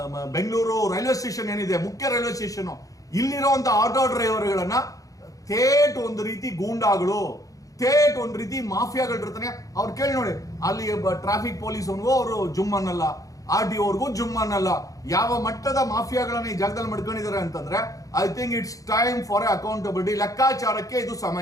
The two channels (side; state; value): right; late; 0.17 ms